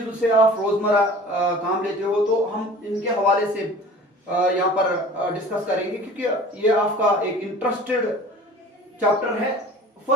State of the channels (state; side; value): normal; both; correlation 0.43